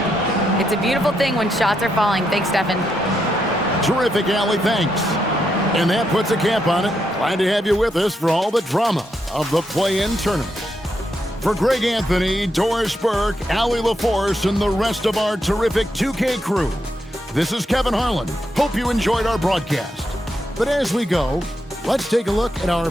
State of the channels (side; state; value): both; normal; correlation 0.81